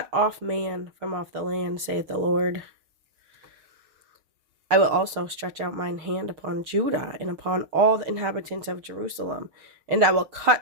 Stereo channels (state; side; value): late; left; 6.4 ms